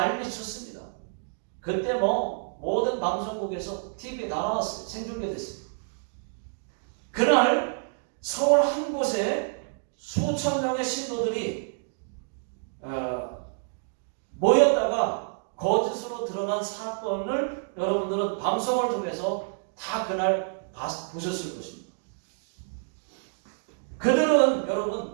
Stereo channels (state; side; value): silent; left; digital silence